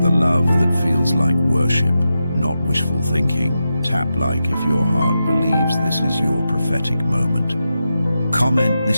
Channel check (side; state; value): both; inverted; correlation -0.89